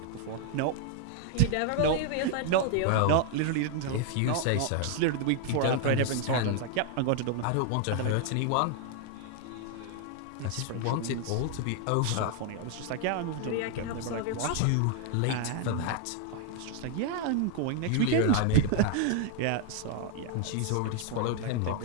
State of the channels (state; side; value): different; both; correlation 0.00